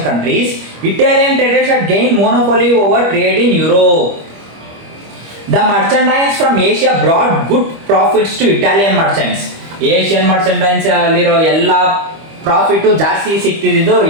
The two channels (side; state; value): left; late; 25 ms